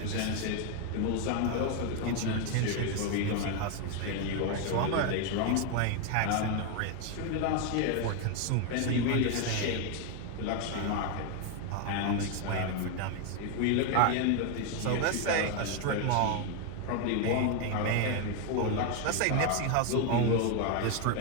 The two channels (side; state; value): both; different; correlation 0.01